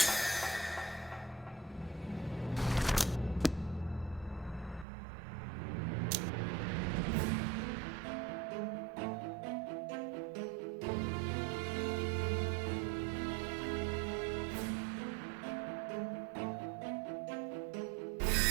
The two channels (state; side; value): drops out; left; at 4.9 s